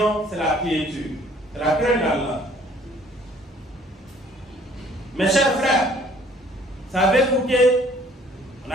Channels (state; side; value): normal; both; correlation 0.58